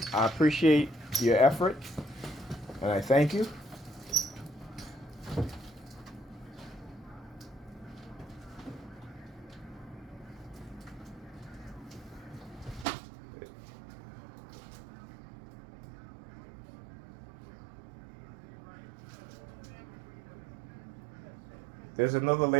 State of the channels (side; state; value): left; drops out; at 12.9 s